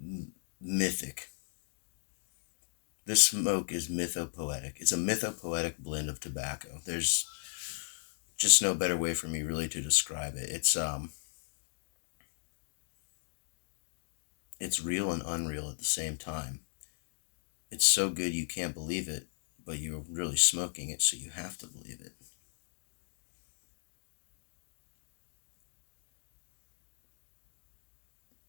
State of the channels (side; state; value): right; silent; digital silence